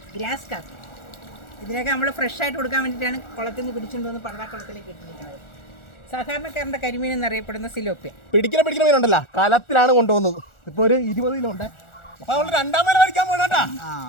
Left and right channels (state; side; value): late; right; 1.4 ms